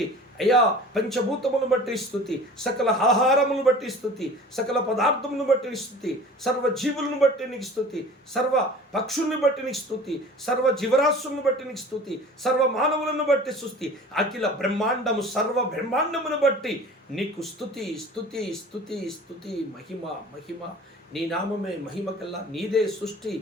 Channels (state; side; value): normal; both; correlation 0.42